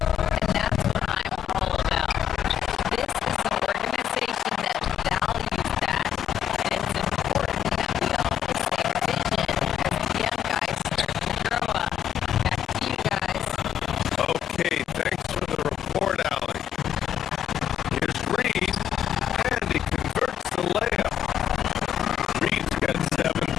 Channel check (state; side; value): quieter; right; 9.8 dB